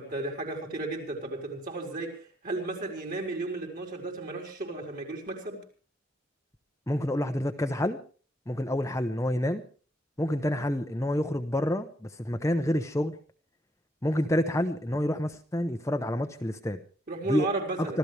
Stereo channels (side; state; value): both; normal; correlation 0.75